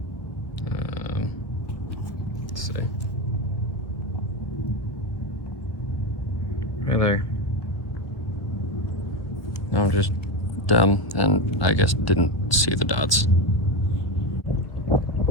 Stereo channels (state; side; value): late; right; 1.2 ms